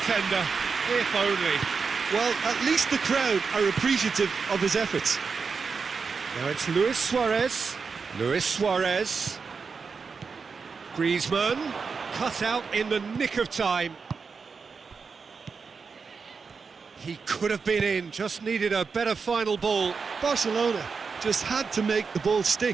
if only. Well, at least the crowd are appreciative of his efforts. Now it's Luis Suarez. Luis Suarez. Griezmann, cut out in the nick of time. He could have been in, just needed a better final ball. Barcelona just had to make the ball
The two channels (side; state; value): left; quieter; 5.2 dB